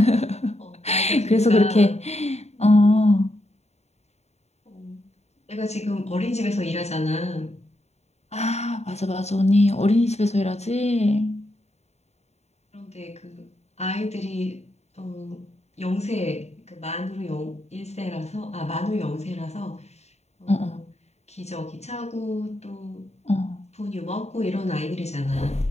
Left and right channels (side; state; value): right; late; 0.32 ms